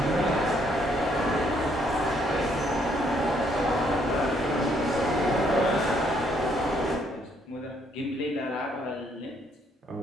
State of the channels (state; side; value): normal; both; correlation 0.69